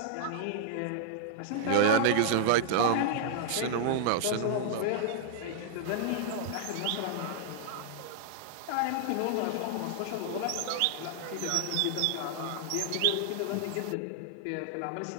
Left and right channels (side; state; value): both; different; correlation 0.00